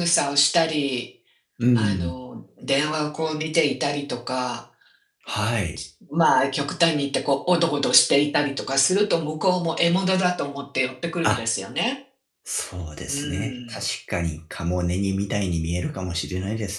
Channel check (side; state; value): both; identical; correlation 1.00